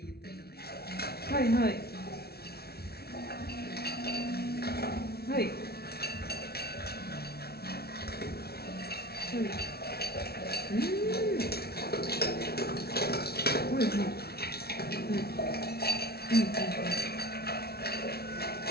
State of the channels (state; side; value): late; right; 0.45 ms